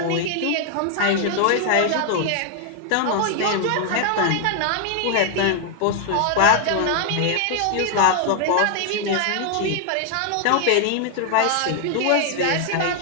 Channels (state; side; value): different; both; correlation 0.00